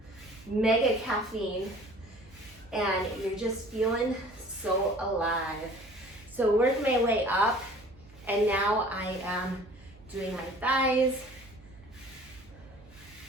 mega caffeine and you're just feeling so alive. So work my way up, and now I am doing my thighs,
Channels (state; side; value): noise; right; hum, 25 dB below the sound